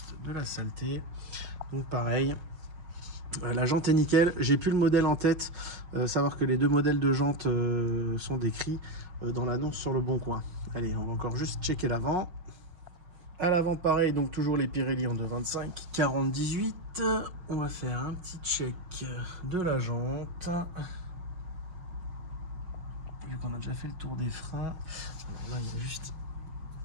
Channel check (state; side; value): late; left; 5.5 ms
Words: de la saleté. Donc pareil, la jante est nickel. J'ai plus le modèle en tête. Savoir que les 2 modèles de jante sont décrits dans l'annonce sur le Bon Coin. Allez, on va encore juste checker l'avant. À l'avant pareil, donc toujours les Pirelli en 2,25 40-18. On va faire un petit check de la jante. Vu qu'on a déjà fait le tour des freins. Alors là, il y a juste...